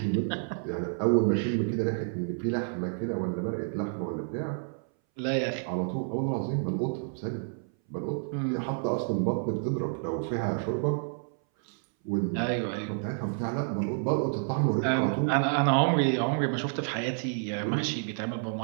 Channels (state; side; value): silent; left; 58 dB below the other